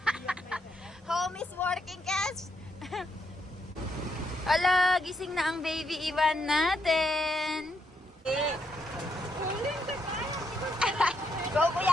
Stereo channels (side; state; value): both; normal; correlation 0.77